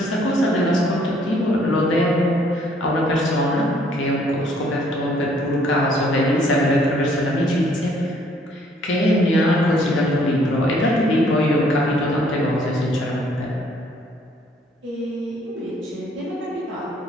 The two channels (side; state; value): both; normal; correlation 0.63